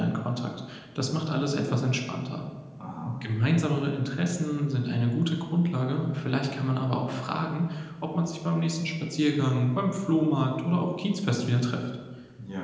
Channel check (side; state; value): both; identical; correlation 1.00